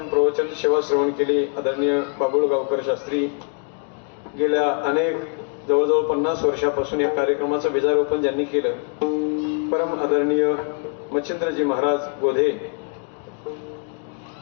प्रवचन सेवा श्रवण केली आदरणीय बाबुळ गावकर शास्त्री गेल्या अनेक जवळजवळ 50 वर्षापासून या कार्यक्रमाचं बीजारोपण ज्यांनी केलं परम आदरणीय मच्छिंद्रजी महाराज गोधे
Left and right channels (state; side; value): quieter; right; 39.9 dB